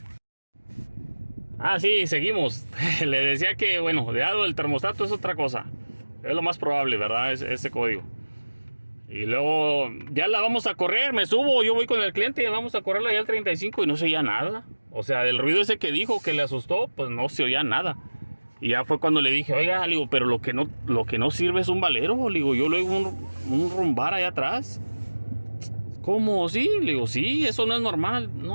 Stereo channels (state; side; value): inverted; both; correlation -1.00